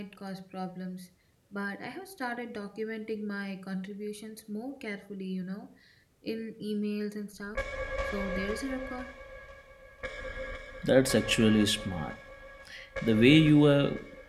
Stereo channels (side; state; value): both; identical; correlation 1.00